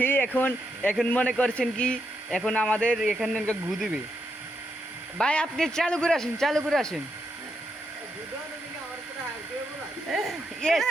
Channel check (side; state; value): both; normal; correlation 0.81